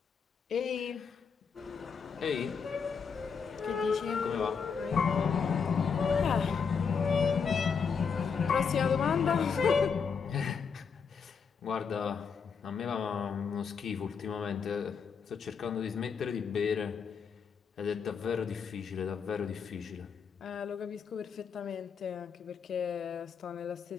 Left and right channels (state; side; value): quieter; right; 6.1 dB